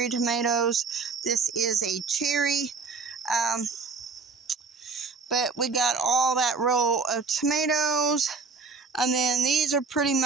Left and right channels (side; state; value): left; quieter; 4.6 dB